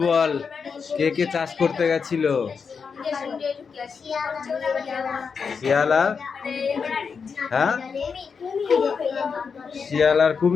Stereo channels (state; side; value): quieter; right; 5.8 dB